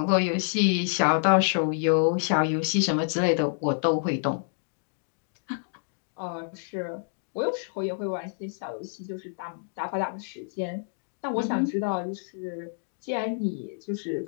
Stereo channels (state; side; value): silent; right; digital silence